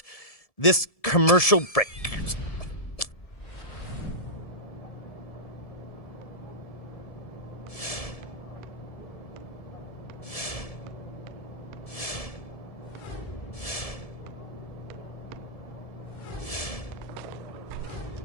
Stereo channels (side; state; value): right; late; 1.7 ms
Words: this commercial break.